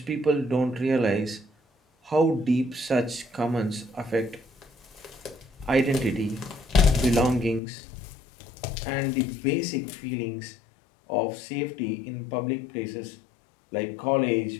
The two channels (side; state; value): right; drops out; at 7.6 s